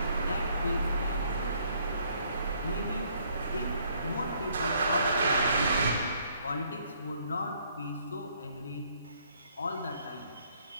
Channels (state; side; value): inverted; both; correlation -0.66